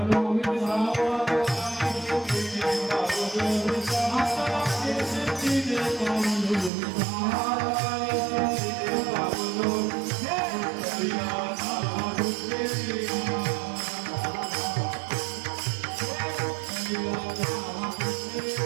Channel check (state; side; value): drops out; left; at 6.7 s